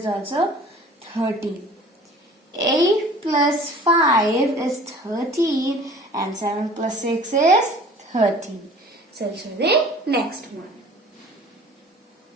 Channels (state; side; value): normal; both; correlation 0.47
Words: also 13. 8 plus 5 is 13 and 7 plus 6 is 13. So I'll show the next one.